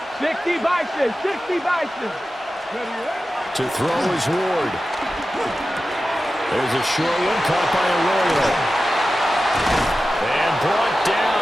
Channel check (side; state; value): both; normal; correlation 0.94